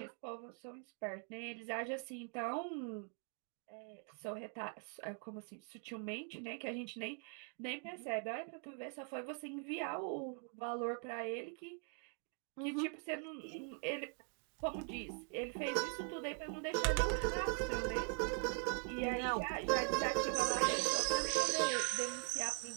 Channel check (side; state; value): left; quieter; 39.3 dB